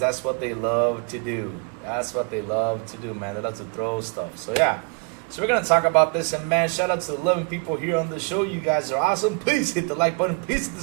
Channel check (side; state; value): left; quieter; 35.7 dB